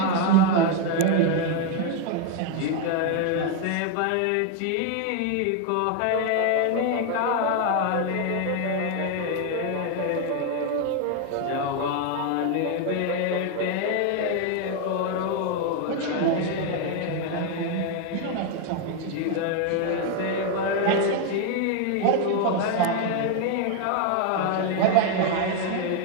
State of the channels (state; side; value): different; both; correlation 0.01